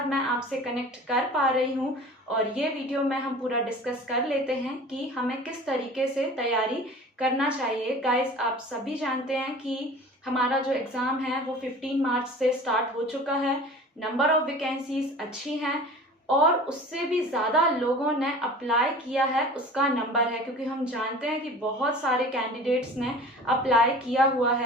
मैं आपसे कनेक्ट कर पा रही हूँ और ये वीडियो में हम पूरा डिस्कस कर लेते हैं कि हमें किस तरीके से तैयारी करना चाहिए। गाइस, आप सभी जानते हैं कि हमारा जो एग्ज़ाम है वो 15 मार्च से स्टार्ट हो चुका है। नंबर ऑफ वैकेंसीज अच्छी हैं और उससे भी ज़्यादा लोगों ने अप्लाई किया है उसका नंबर है, क्योंकि हम जानते हैं कि बहुत सारे कैंडिडेट्स ने अप्लाई किया हुआ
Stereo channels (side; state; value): both; normal; correlation 0.41